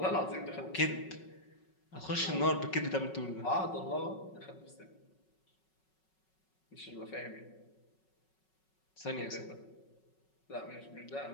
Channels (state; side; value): late; right; 5.4 ms